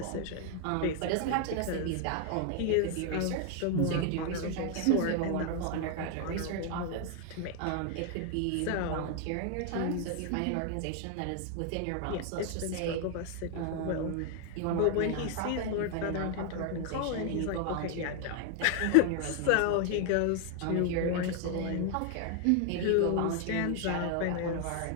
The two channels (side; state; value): both; different; correlation 0.00